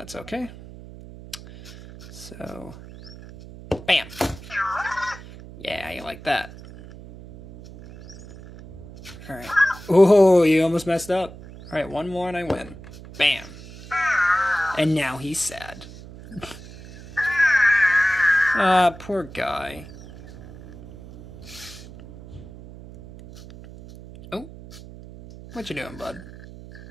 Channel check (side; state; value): right; noise; hum, 17 dB below the sound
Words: okay. So, bam. Yeah, you like that. Alright. Oh, you almost messed up. Alright, one more and I win. Bam. And now he's sad. Ah, poor guy. Oh. What you doing, bud?